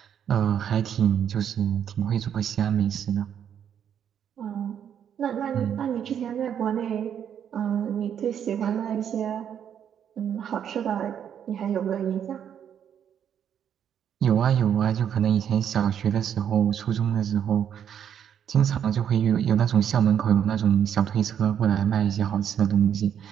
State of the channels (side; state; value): left; quieter; 8.9 dB